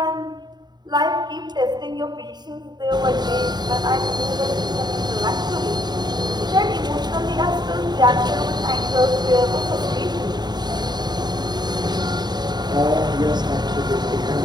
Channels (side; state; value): left; late; 0.20 ms